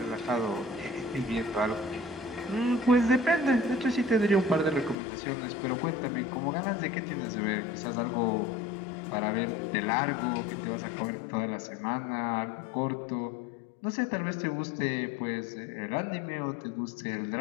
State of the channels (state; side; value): drops out; right; at 5.0 s